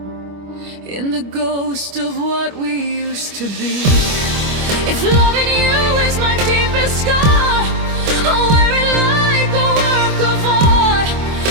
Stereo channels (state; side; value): late; left; 25 ms